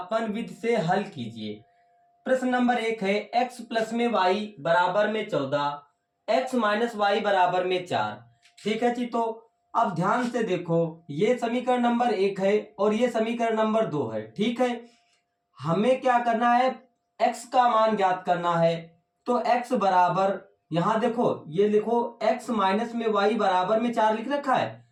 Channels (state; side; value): identical; both; correlation 1.00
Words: विधि से हल कीजिए। प्रश्न नंबर 1 है x प्लस में y बराबर में 14, x माइनस वाई बराबर में 4। ठीक है जी, तो अब ध्यान से देखो, ये समीकरण नंबर 1 है और ये समीकरण नंबर 2 है। ठीक है, हमें क्या करना है, x का मान ज्ञात करना है। तो x बराबर, यहां देखो ये लिखो x माइनस में y बराबर में 4 लिख रखा है,